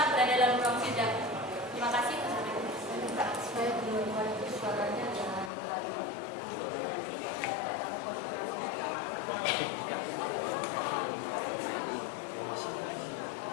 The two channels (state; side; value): drops out; right; at 5.5 s